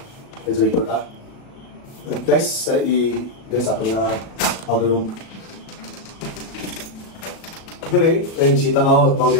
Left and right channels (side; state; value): right; late; 37 ms